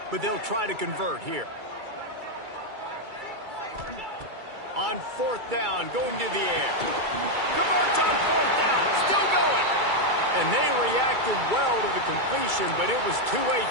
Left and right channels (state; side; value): late; left; 2.3 ms